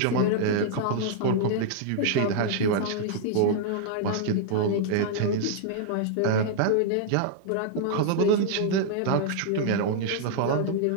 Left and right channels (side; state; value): both; different; correlation -0.01